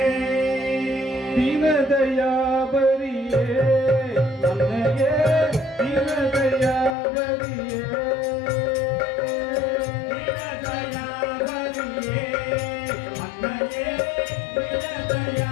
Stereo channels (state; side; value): drops out; right; at 7.0 s